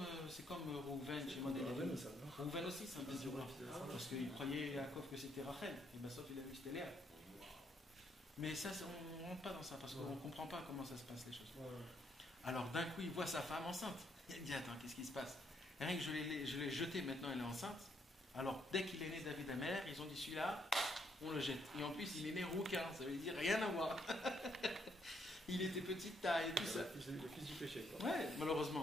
Rouven chez Modèle. Ouais, mais ça va. Rouven aussi, c'est un Ah, désir. c'est vrai. Parce qu'il croyait Yaakov que c'était Rachel. Et bien, sauf il a vu que c'était Léa. Mais ça, on ne rentre pas dans ça parce qu'on ne comprend pas comment ça se passe les choses. Ouais. Alors d'un coup, il voit sa femme enceinte. Il dit, attends, qu'est-ce qui se passe? Rien que je l'ai jetée, maintenant elle est enceinte. Alors dès qu'il est né David Ameller, ils ont dit, celui-là, on le jette. Et en plus, il est né rouquin, ça veut dire rien à voir. Il était petite taille et tout ça. Le fils du péché, quoi. Ouais,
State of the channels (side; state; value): both; normal; correlation 0.73